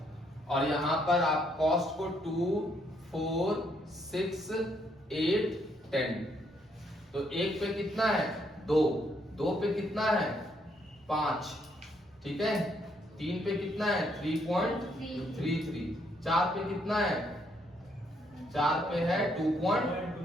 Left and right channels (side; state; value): both; normal; correlation 0.72